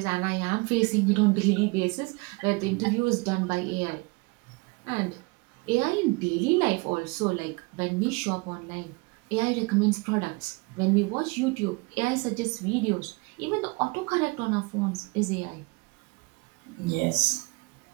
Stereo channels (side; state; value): left; quieter; 27.6 dB